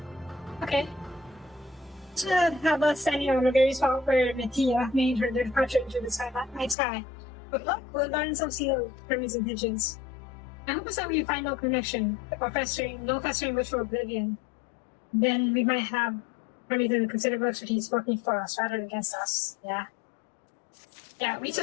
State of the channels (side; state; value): right; drops out; at 6.8 s